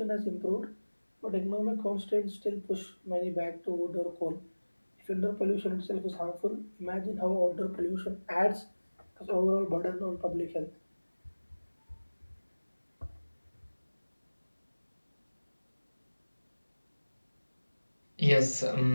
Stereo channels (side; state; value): both; inverted; correlation -1.00